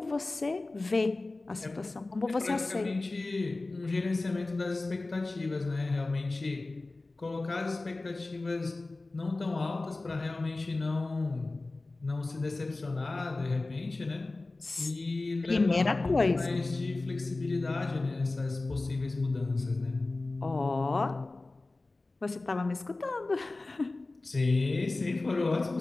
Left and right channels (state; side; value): quieter; right; 3.2 dB